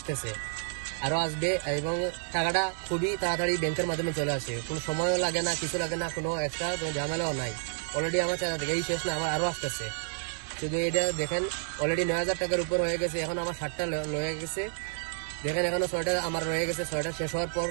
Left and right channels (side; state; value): left; silent; digital silence